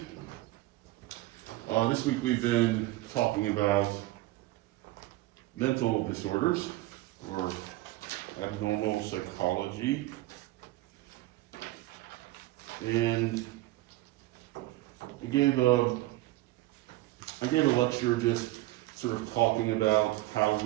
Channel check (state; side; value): quieter; left; 17.7 dB